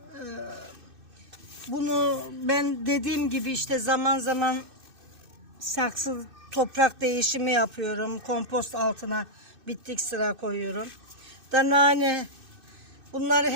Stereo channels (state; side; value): late; left; 2.6 ms